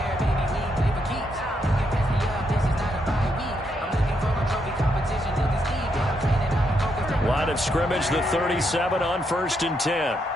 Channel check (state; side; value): normal; both; correlation 0.78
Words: Line of scrimmage, the 37 on first and 10.